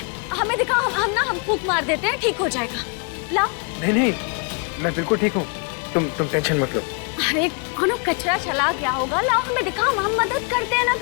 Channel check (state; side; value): quieter; right; 36.8 dB